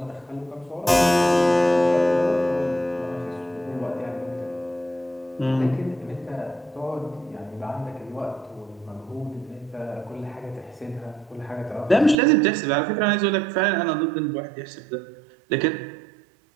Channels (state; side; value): drops out; left; at 12.2 s